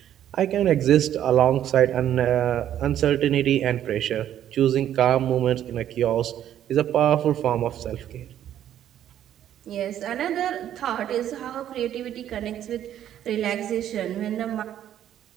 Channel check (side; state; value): left; quieter; 11.0 dB